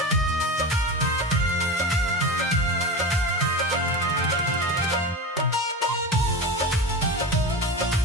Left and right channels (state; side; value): normal; both; correlation 0.25